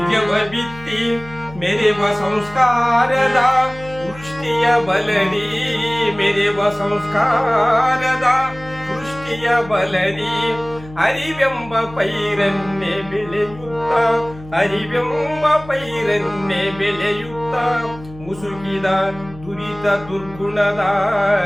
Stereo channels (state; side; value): noise; left; hum, 18 dB below the sound